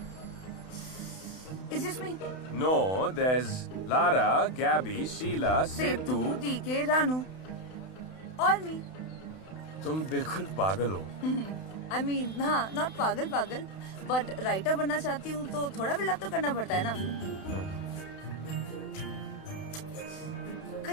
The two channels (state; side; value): late; right; 31 ms